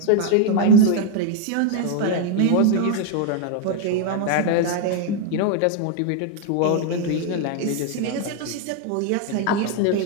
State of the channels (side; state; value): both; different; correlation 0.00